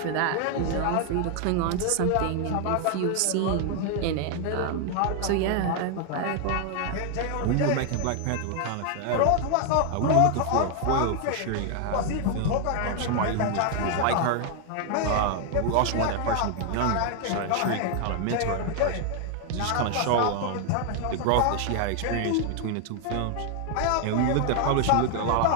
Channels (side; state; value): both; different; correlation 0.00